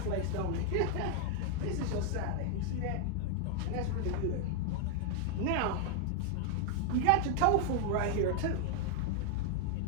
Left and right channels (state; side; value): different; both; correlation 0.00